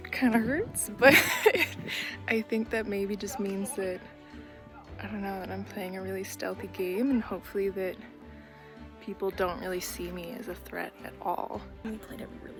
kind of hurts, but I think that maybe just means that, I don't know, that I'm playing a really stealthy game, and hopefully that people don't really see me as a threat at all. We played it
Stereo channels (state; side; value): identical; both; correlation 1.00